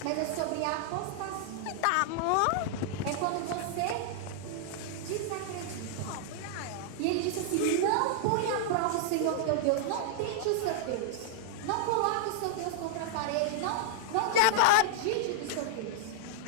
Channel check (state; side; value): different; both; correlation -0.01